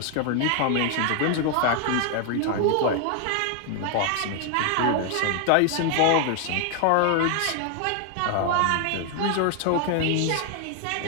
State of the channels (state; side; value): different; both; correlation 0.00